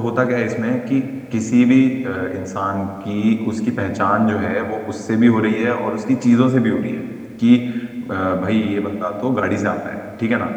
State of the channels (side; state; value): both; identical; correlation 1.00